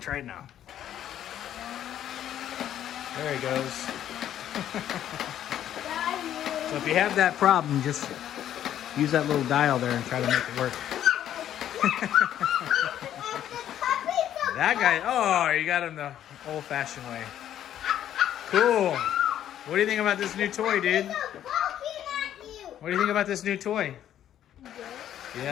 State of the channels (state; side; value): quieter; right; 11.0 dB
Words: it now. There he goes. So if you have that problem, just use that little dial there and try to make it work. That guy, oh, you got him the old-fashioned way. Cool. What do you think about this new toy, dude? What do you think about this new toy?